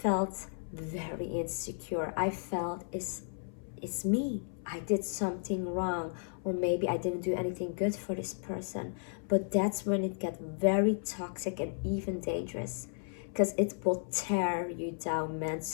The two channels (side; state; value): right; silent; 55 dB below the other